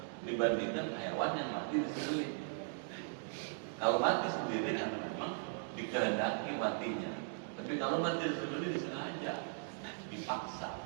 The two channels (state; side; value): silent; left; digital silence